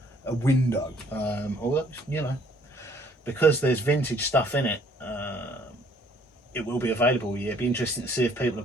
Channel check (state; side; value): normal; both; correlation 0.60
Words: window, although, you know, because there's vintage stuff in it. It will be available. Yeah, it'd be interesting to see if people are